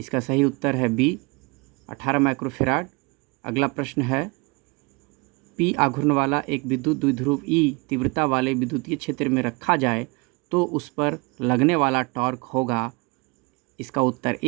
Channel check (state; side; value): quieter; left; 28.2 dB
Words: सही उत्तर है बी, 18 माइक्रोफेराड। अगला प्रश्न है, पी आघूर्ण वाला एक विद्युत द्विध्रुव ई तीव्रता वाले विद्युतीय क्षेत्र में रखा जाए तो उस पर लगने वाला टॉर्क होगा। इसका उत्तर